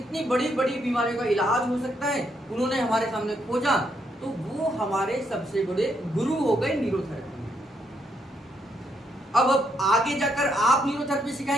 बड़ी बड़ी बीमारियों का इलाज हो सकता है, उन्होंने हमारे सामने खोजा, तो वो हमारे सबसे बड़े गुरु हो गए न्यूरोथेरेपी में। अब आगे जाकर आप न्यूरोथेरेपी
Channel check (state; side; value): normal; both; correlation 0.75